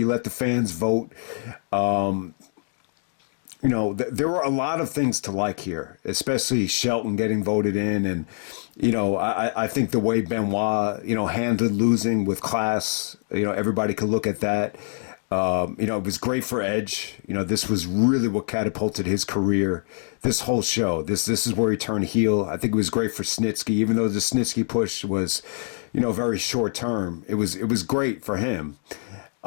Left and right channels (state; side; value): silent; right; digital silence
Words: let the fans vote. There were a lot of things to like here, especially Shelton getting voted in. And, I think the way Benoit, handled losing with class, everybody could look at that. It was great for Edge. This was really what catapulted his career. This whole show, this is where he turned heel. I think it was great for Snitsky, even though the Snitsky push was, very short term. It was great for him.